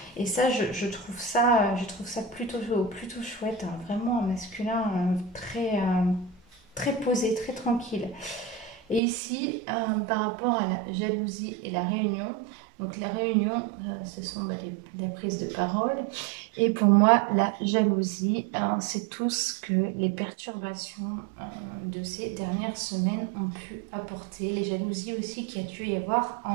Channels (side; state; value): left; drops out; at 9.0 s